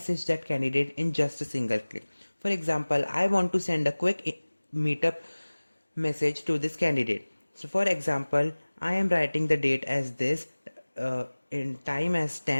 that candidate in just a single click. For example, I want to send a quick meetup message to this candidate. So for example, I am writing the date as this, in time as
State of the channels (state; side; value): inverted; both; correlation -1.00